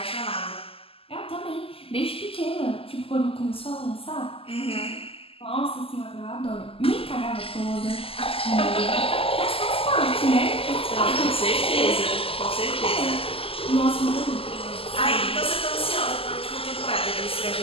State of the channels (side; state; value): right; late; 0.27 ms